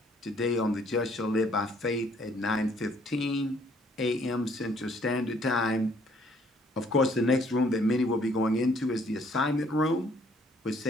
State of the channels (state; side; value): normal; both; correlation 0.63